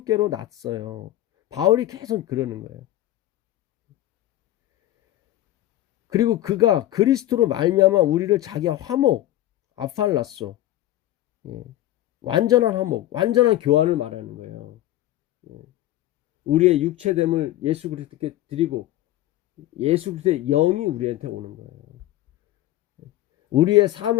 났어요. 바울이 계속 그러는 거예요. 그리고 그가 그리스도로 말미암아 우리를 자기와 화목, 아팔라소, 완전한 화목, 완전한 교환을 말하는 거예요. 우리의 육체됨을 예수 그리스도께 드리고 예수 그리스도의 영이 우리한테 오는 거예요. 우리의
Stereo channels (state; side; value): quieter; right; 14.4 dB